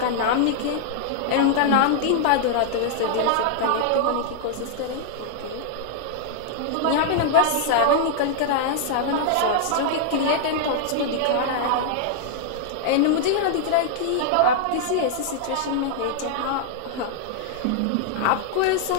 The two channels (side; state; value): both; different; correlation -0.01